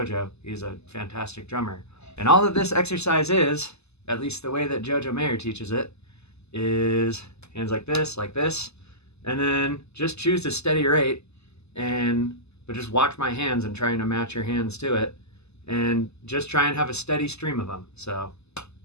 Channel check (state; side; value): late; right; 0.80 ms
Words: He's a fantastic drummer. And all that this exercise is, at least the way that Jojo Mayer teaches it, is hands like this, and then just choose a steady rate, but just watch my hands and trying to match your hands to it, and just try and have a steady stream of them. So